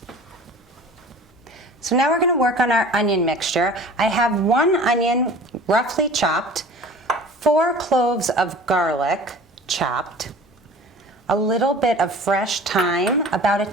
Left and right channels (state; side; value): normal; both; correlation 0.43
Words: So now we're going to work on our onion mixture. I have 1 onion roughly chopped, 4 cloves of garlic chopped, a little bit of fresh thyme, about a